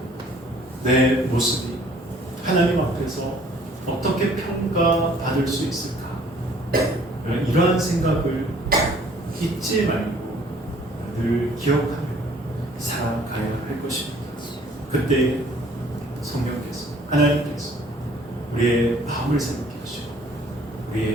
내 모습이 하나님 앞에서 어떻게 평가받을 수 있을까? 이러한 생각을 잊지 말고 늘 기억하며 살아가야 할 것입니다. 그때 성령께서, 하나님께서 우리의 마음을 새롭게 하시고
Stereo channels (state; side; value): normal; both; correlation 0.57